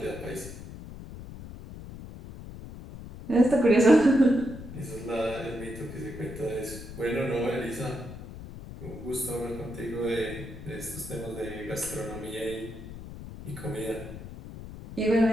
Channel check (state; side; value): noise; left; rumble, 12 dB below the sound